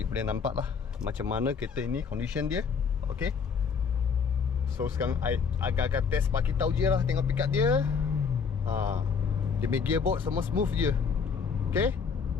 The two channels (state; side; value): quieter; right; 5.9 dB